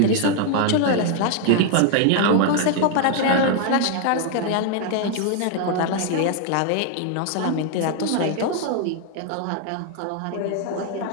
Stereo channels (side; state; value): both; different; correlation 0.00